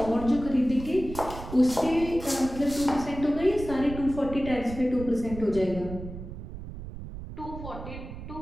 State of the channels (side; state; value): right; noise; rumble, 10 dB below the sound